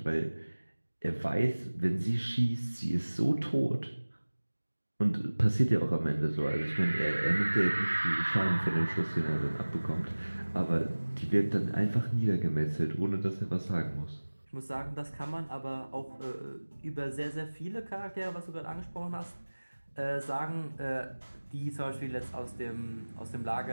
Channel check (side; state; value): both; inverted; correlation -1.00